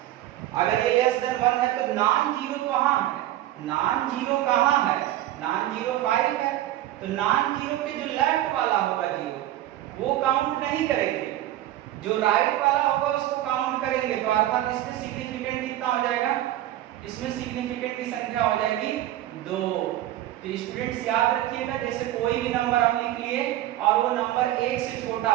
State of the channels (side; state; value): left; quieter; 14.0 dB